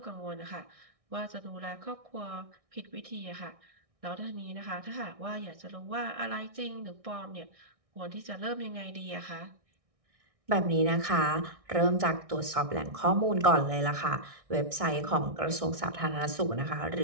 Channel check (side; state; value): left; late; 1.6 ms